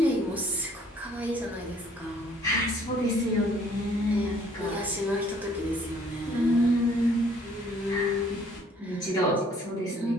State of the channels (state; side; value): normal; both; correlation 0.60